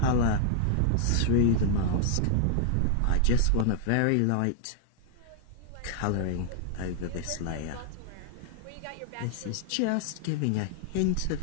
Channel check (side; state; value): both; different; correlation 0.00